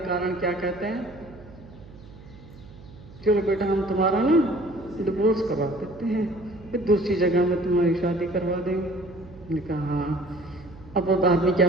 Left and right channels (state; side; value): noise; right; hum, 19 dB below the sound